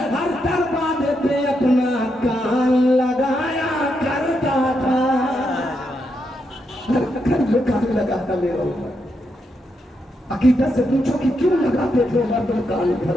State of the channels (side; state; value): both; normal; correlation 0.82